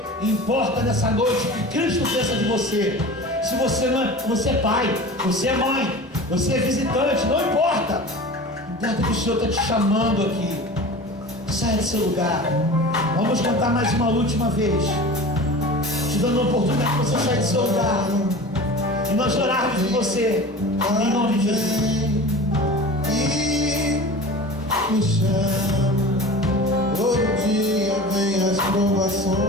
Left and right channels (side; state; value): both; normal; correlation 0.36